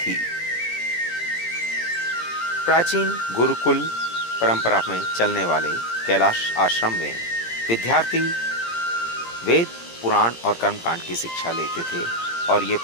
प्राचीन गुरुकुल परंपरा में चलने वाले कैलाश आश्रम में विद्यार्थी वेद, पुराण और कर्मकांड की शिक्षा लेते थे और ये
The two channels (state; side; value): late; right; 17 ms